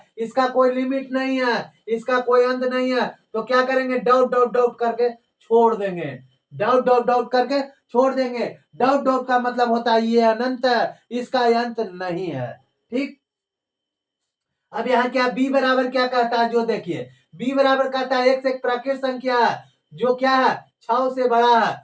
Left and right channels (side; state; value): both; identical; correlation 1.00